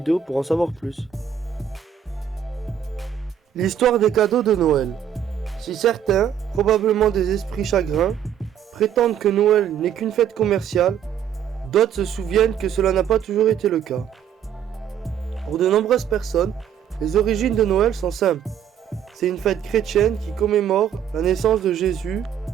pour en savoir plus. L'histoire des cadeaux de Noël. Si certains, probablement des esprits chagrins, prétendent que Noël n'est qu'une fête commerciale, d'autres se souviennent que cela n'a pas toujours été le cas. Pour de nombreuses personnes, les origines de Noël sont simples. C'est une fête chrétienne qui commémore la naissance de Jésus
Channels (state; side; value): quieter; left; 8.9 dB